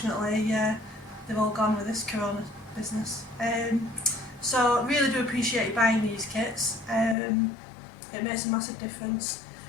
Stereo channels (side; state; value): right; drops out; at 7.2 s